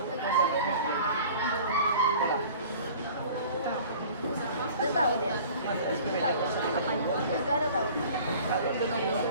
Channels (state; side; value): inverted; both; correlation -0.46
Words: Udah tahu dia. Apanya? Enggak ada tahu.